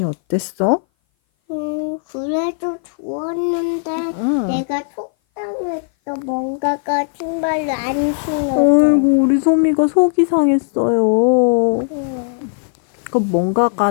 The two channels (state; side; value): silent; right; 59 dB below the other